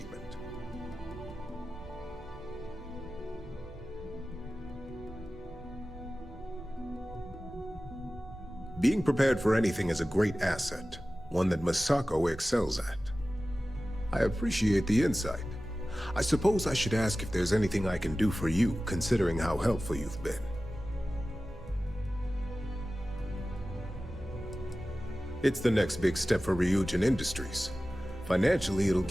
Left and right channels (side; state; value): both; normal; correlation 0.96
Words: Being prepared for anything is a great asset, one that Masako excels at. I appreciate the insight. I suppose I should ask if there's anything I can do for you, considering how helpful you've been. It's the next big step for Ryujin Industries. Financially, it'll